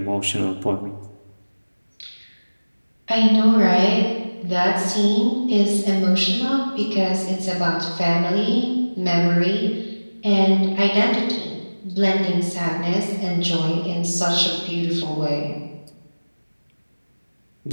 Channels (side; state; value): both; inverted; correlation -1.00